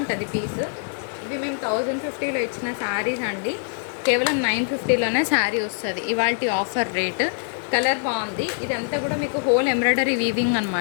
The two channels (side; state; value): right; silent; digital silence